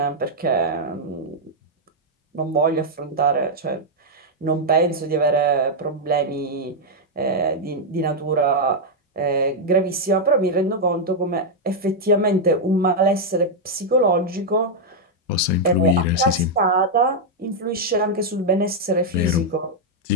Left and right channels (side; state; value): both; normal; correlation -0.02